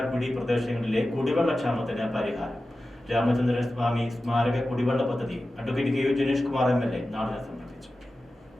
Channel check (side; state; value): both; normal; correlation 0.94